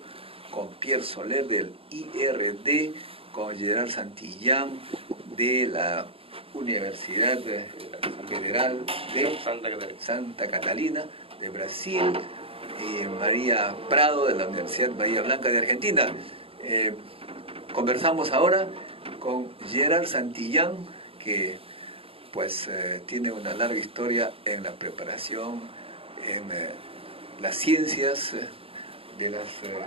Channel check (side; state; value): left; late; 0.27 ms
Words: con Pierre Soler del IRD, con Gerard Santillán de la Universidad Federal de Santa Catalina de Brasil, y María Prado de la Universidad Bahía Blanca de Argentina. Conversamos ahora con Gerard Santillán, que pues tiene una larga historia en la preparación, en las ciencias de los